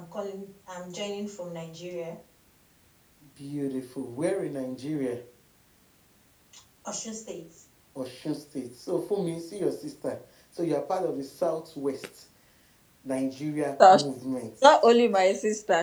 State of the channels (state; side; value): identical; both; correlation 1.00